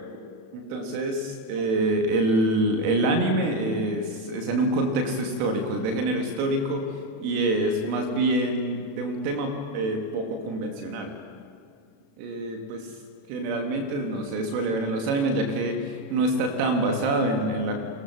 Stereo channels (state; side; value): late; left; 36 ms